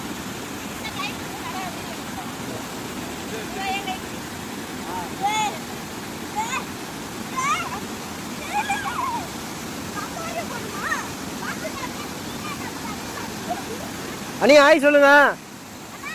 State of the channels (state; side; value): identical; both; correlation 1.00